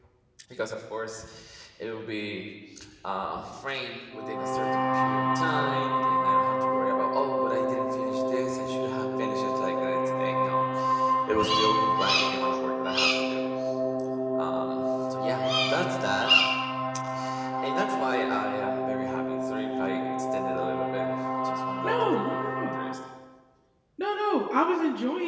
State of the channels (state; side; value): identical; both; correlation 1.00